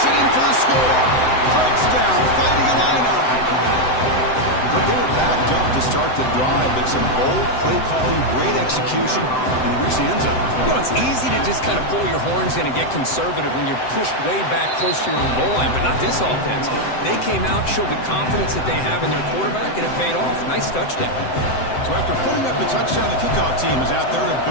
it in for the score. Touchdown, Fighting Illini. But they were backed up to start the drive, but some bold play calling, great execution, and they reached the end zone. You know, it's easy to just kind of pull your horns in and get conservative when you're pushed way back close to your own goal line, but not this offense. They came out, showed the confidence that they have in their quarterback, and it paid off. Nice touchdown. So after putting up the touchdown, the kickoff team is out there to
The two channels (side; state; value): right; late; 7.8 ms